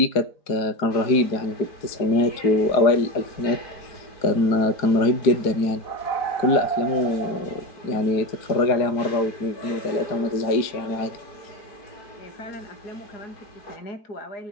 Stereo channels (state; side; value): late; right; 4.8 ms